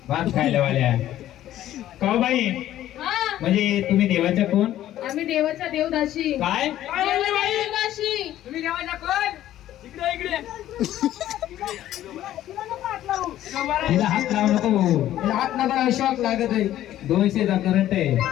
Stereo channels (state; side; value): quieter; right; 13.0 dB